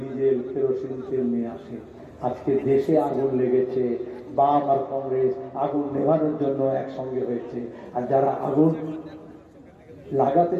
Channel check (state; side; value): identical; both; correlation 1.00